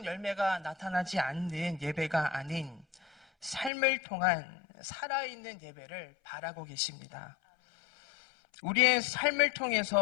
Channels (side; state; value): right; drops out; at 3.7 s